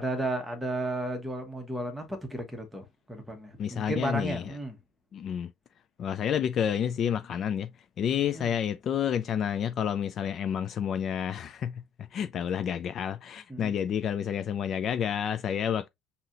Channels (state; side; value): quieter; right; 6.0 dB